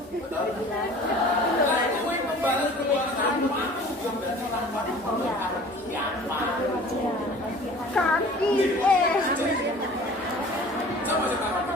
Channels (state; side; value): normal; both; correlation 0.45